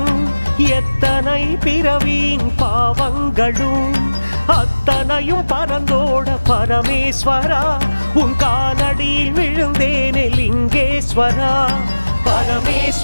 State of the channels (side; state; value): both; inverted; correlation -1.00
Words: எத்தனை பிறவியின் பாவங்களும் அத்தனையும் பரந்தோட பரமேஸ்வரா, உன் காலடியில் விழுந்தேனே லிங்கேஸ்வரா,